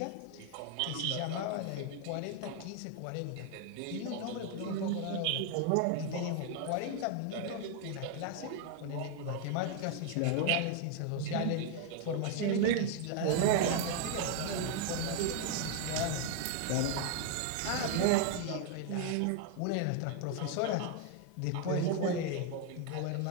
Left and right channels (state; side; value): different; both; correlation 0.01